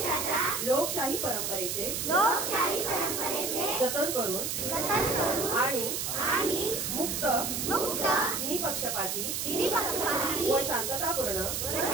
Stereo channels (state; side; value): noise; right; hiss, 2 dB below the sound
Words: लोकशाही परंपरेचे जतन करून आणि मुक्त निपक्षपाती व शांततापूर्ण